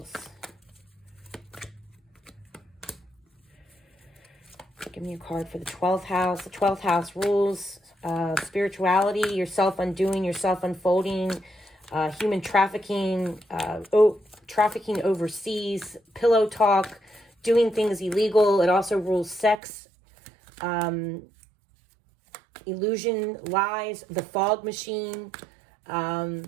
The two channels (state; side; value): drops out; left; at 19.6 s